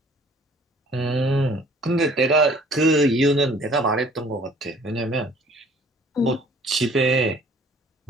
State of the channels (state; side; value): normal; both; correlation 0.54